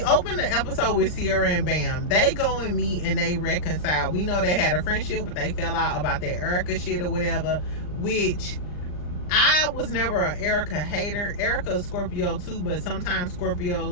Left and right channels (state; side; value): late; right; 39 ms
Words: the episode with Sierra and Bam. They go and meet and they reconcile. We know they had a friendship, but they fell out about that Erica shit or whatever, which I was never an Erica hater. Erica's Scorpio too, but sometimes